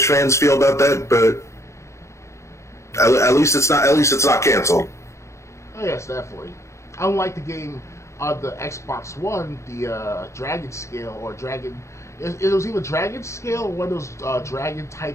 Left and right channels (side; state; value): right; late; 0.14 ms